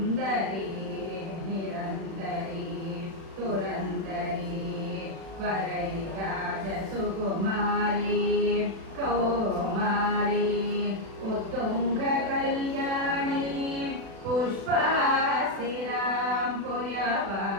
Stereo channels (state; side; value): late; left; 36 ms